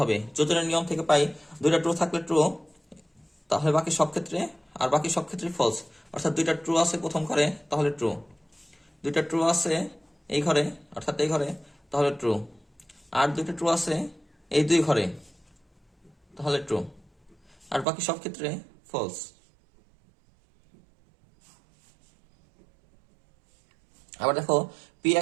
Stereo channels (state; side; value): drops out; left; at 17.9 s